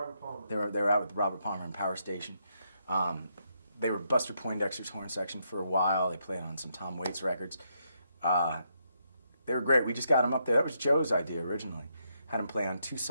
Palmer. They were out with Robert Palmer and Power Station. They were Buster Poindexter's horn section for a while. They played on some Tom Waits records. They were great. We just got them up there. That was Joe's idea originally. Had them play on 2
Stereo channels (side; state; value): both; inverted; correlation -0.78